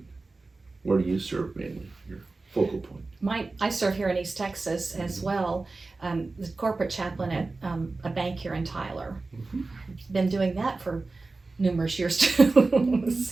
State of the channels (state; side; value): quieter; left; 3.6 dB